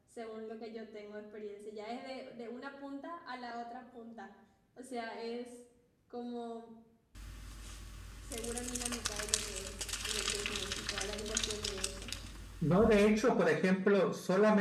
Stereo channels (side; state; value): both; identical; correlation 1.00